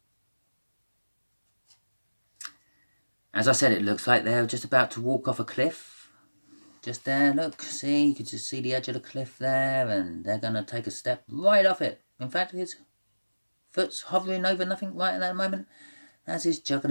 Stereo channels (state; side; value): inverted; both; correlation -1.00